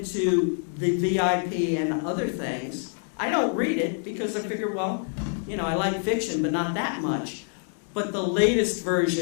the VIP and other things. I don't read it because I figure, well, you know, I like fiction, but not that much. But the latest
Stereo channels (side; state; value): right; silent; 55 dB below the other